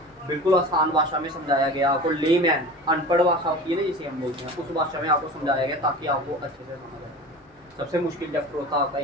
बिल्कुल आसान भाषा में समझाया गया आपको, लेमैन अनपढ़ भाषा होती है ना जिसे हम बोलते हैं, उस भाषा में आपको समझाया गया ताकि आपको अच्छे से समझ आए। सबसे मुश्किल चैप्टर होता है आपका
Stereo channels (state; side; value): normal; both; correlation 0.35